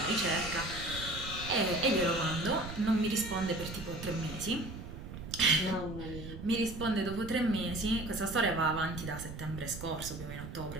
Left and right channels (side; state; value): right; noise; rumble, 10 dB below the sound